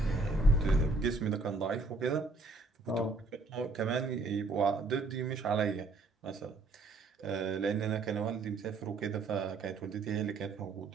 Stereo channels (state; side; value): quieter; left; 3.5 dB